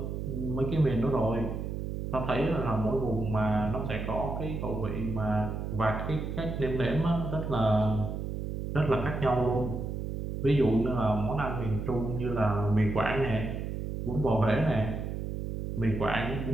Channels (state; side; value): noise; right; hum, 4 dB below the sound